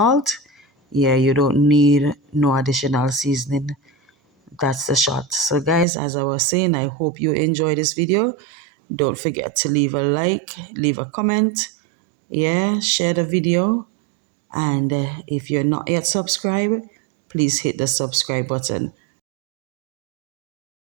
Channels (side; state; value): left; drops out; at 5.9 s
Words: Yeah, you don't need no additional seasoning. That's the shot. So guys, as I was saying, I hope you enjoy this video. Don't forget to leave a like, leave a comment, yeah, share the video, and if you're not yet subscribed, please hit the subscribe button.